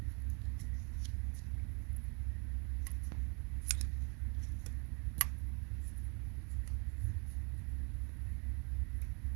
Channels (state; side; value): quieter; left; 34.6 dB